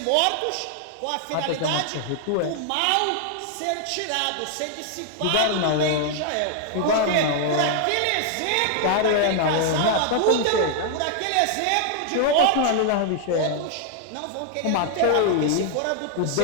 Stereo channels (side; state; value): both; different; correlation 0.00